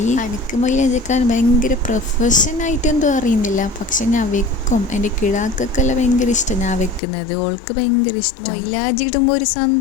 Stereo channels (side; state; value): right; drops out; at 7.0 s